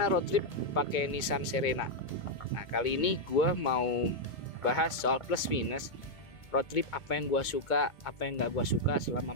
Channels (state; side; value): late; right; 2.2 ms